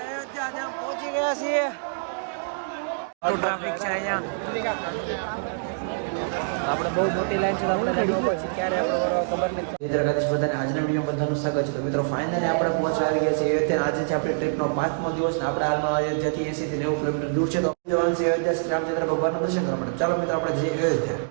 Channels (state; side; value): silent; left; digital silence